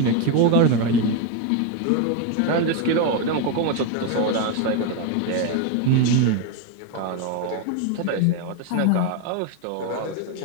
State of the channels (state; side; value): different; both; correlation 0.02